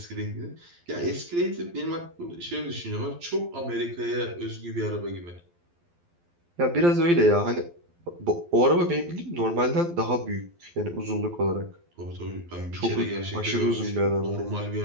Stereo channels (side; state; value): left; late; 12 ms